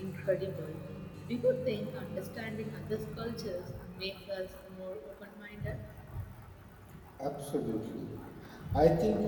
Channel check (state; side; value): identical; both; correlation 1.00